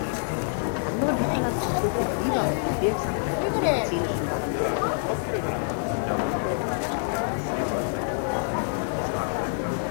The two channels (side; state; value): right; silent; 61 dB below the other